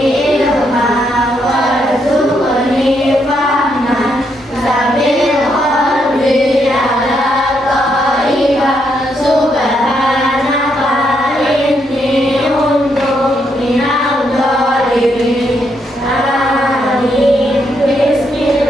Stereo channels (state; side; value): normal; both; correlation 0.77